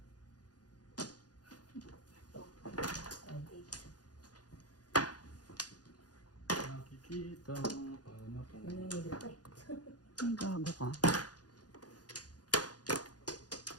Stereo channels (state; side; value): late; right; 0.69 ms